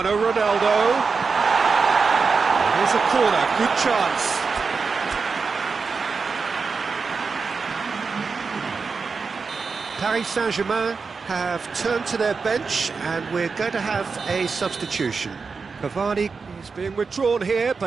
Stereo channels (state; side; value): quieter; left; 4.9 dB